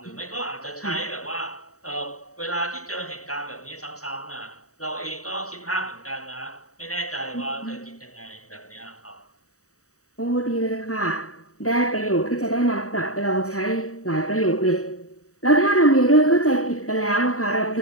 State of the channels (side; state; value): right; late; 0.65 ms